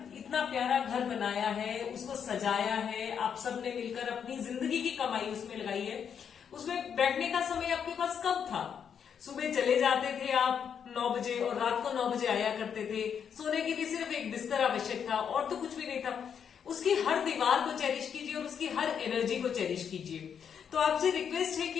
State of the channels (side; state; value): right; quieter; 7.6 dB